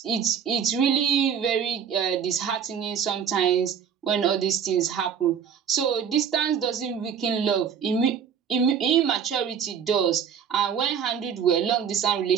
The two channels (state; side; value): quieter; left; 7.7 dB